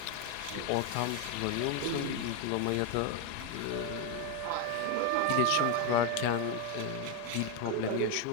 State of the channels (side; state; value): both; different; correlation 0.02